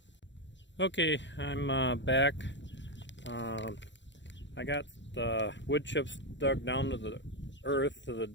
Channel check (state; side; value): late; right; 0.53 ms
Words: Okay, I'm back. I got the wood chips dug down to the earth, to the